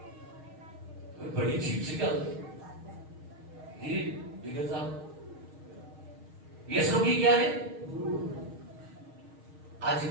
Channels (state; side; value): late; left; 6.4 ms